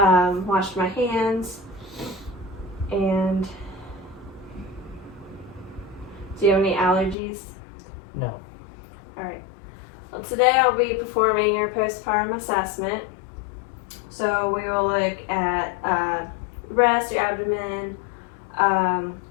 my hands. And do you have any allergies? No. Alright. Well, today I'll be performing your postpartum assessment. So we will look at breast, your abdomen,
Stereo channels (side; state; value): right; drops out; at 7.2 s